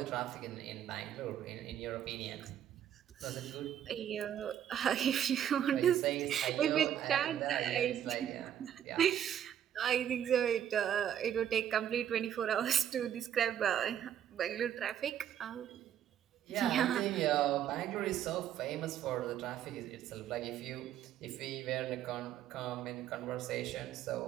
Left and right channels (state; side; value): quieter; left; 10.2 dB